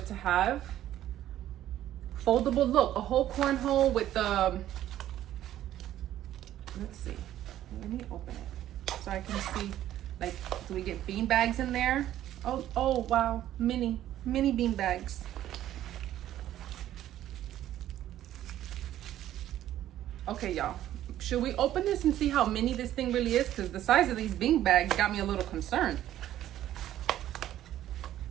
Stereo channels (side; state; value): left; quieter; 12.5 dB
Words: to have. Foldable, look, a whole cornhole with the, let's see, let me open it so I can see, like, do we get bean bags in there? Oh wow, mini bean bags. Okay, y'all, should we open this and see how mini this thing really is? Because the size of these bean bags got me a little concerned.